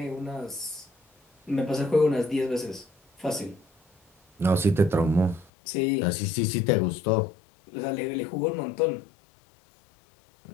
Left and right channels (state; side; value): drops out; right; at 5.5 s